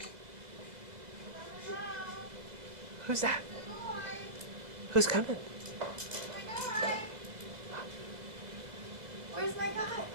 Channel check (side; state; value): left; late; 2.0 ms